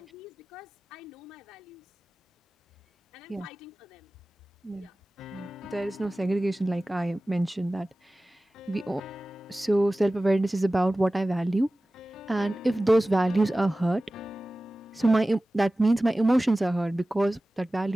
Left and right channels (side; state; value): both; normal; correlation 0.97